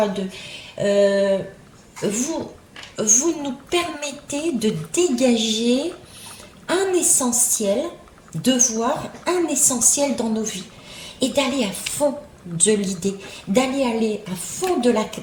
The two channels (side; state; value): both; identical; correlation 1.00